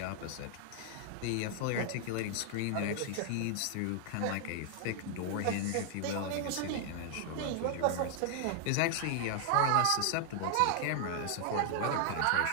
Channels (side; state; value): both; different; correlation 0.00